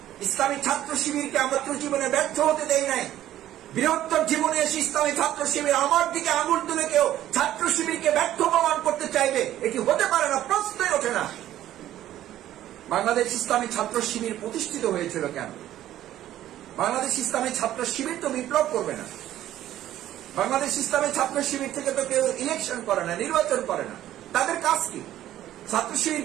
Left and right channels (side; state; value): left; quieter; 12.9 dB